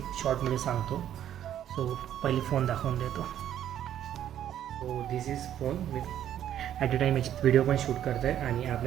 शॉर्टमध्ये सांगतो. सो पहिली फोन दाखवून देतो. So this is phone with at a time याची व्हिडिओ पण शूट करत आहे आणि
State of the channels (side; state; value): left; quieter; 10.8 dB